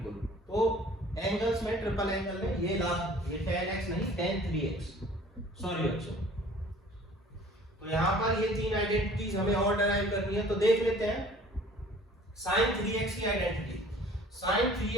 तो एंगल्स में, ट्रिपल एंगल में ये tan x नहीं, tan 3x, सॉरी बच्चों। तो यहां पर ये तीन आइडेंटिटीज हमें और डिराइव करनी है, तो देख लेते हैं sin 3x की आइडेंटिटी। sin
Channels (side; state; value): both; normal; correlation 0.50